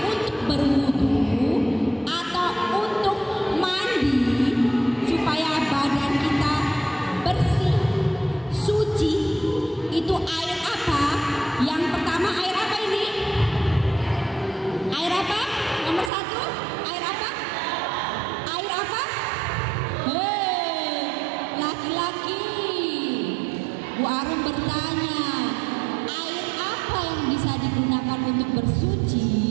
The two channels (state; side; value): drops out; left; at 16.1 s